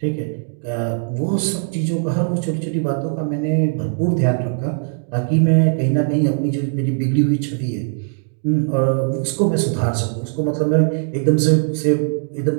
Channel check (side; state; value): left; silent; 66 dB below the other